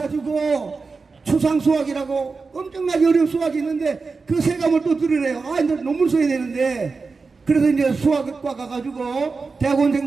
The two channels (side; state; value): left; quieter; 4.4 dB